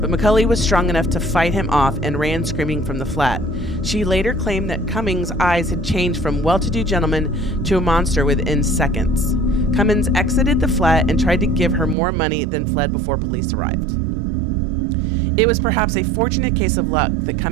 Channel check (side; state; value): left; drops out; at 12.0 s